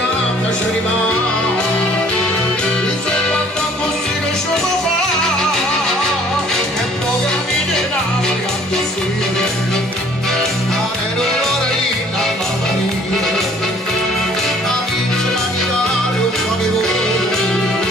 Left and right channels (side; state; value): both; normal; correlation 0.56